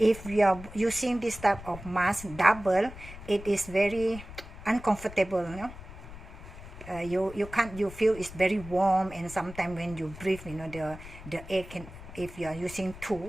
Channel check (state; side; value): noise; left; rumble, 15 dB below the sound